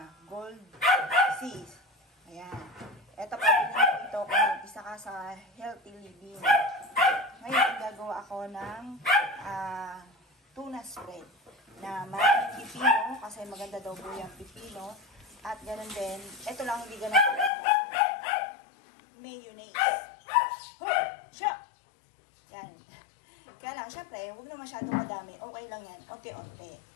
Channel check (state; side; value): drops out; right; at 17.5 s